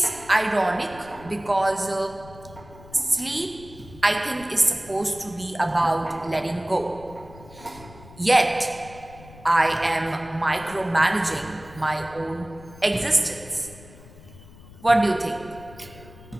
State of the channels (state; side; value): noise; left; rumble, 20 dB below the sound